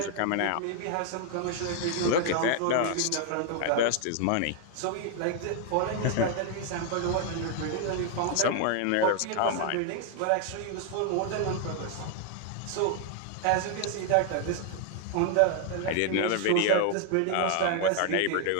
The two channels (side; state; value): both; different; correlation 0.00